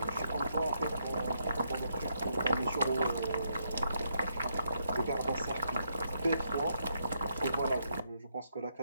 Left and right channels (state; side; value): inverted; both; correlation -0.78